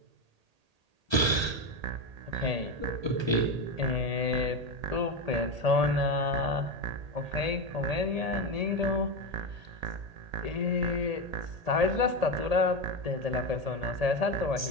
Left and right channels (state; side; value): late; left; 1.8 ms